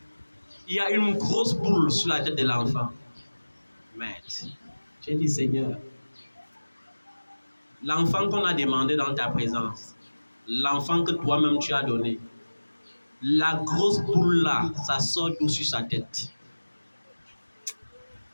il y a une grosse boule sur la tête de l'enfant. Mais j'ai dit, Seigneur, l'enfant qu'on a demandé dans ta présence, l'enfant que toi-même tu as donné, la grosse boule là, ça sort d'où sur sa tête.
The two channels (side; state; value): both; inverted; correlation -1.00